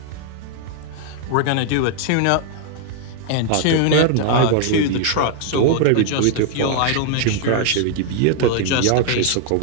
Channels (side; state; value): both; different; correlation 0.00